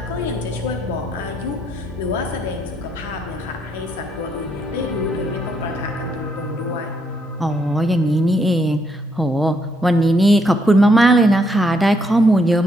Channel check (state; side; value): normal; both; correlation 0.74